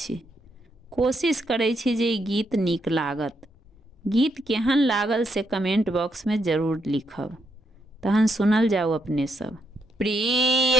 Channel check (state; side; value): normal; both; correlation 0.78